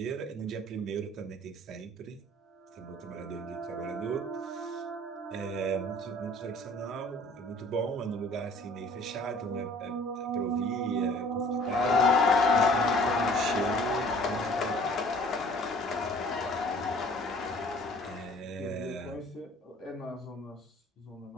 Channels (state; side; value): normal; both; correlation 0.52